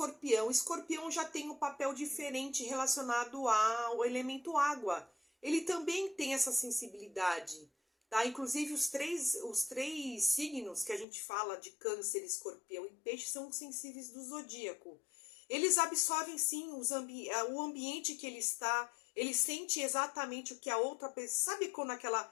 Escorpião já tem um papel diferente relacionado ao elemento água. Ele também tem essa sensibilidade, tá? Inclusive os três signos que a gente fala de Câncer, Escorpião e Peixe são sensíveis do zodíaco. Eles absorvem sim o ambiente que ele está, ele sente exatamente o que a outra pessoa... Sabe quando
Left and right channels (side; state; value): right; drops out; at 11.1 s